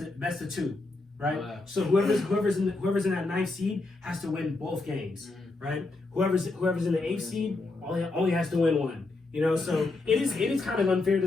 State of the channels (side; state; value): right; quieter; 3.3 dB